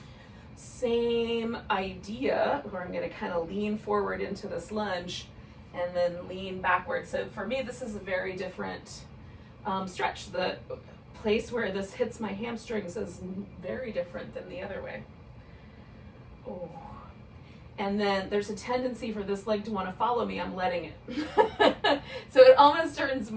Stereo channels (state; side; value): identical; both; correlation 1.00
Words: Same idea, where I'm going to kind of lean forward into this lunge and then lean backwards. So for me, this is a very different stretch. The place where this hits my hamstrings is very different than the other way. Oh. And then there's a tendency for this leg to want to follow me. I'm letting it. So it almost turns